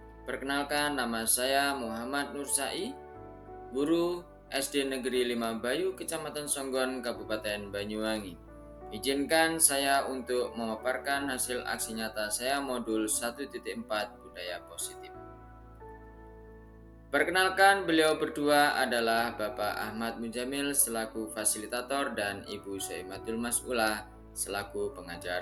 Perkenalkan, nama saya Muhammad Nur Sai, guru SD Negeri 5 Bayu, Kecamatan Songgon, Kabupaten Banyuwangi. Izinkan saya untuk memaparkan hasil aksi nyata saya modul 1.4 Budaya Positif. Perkenalkan, beliau berdua adalah Bapak Ahmad Mujamil selaku fasilitator dan Ibu Soimatul Mas'ulah selaku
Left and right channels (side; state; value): both; identical; correlation 1.00